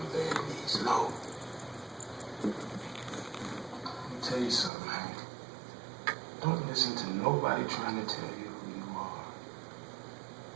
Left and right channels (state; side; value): drops out; left; at 4.7 s